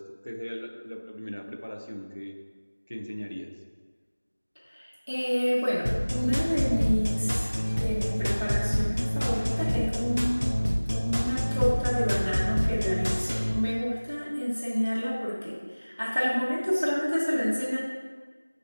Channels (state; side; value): inverted; both; correlation -1.00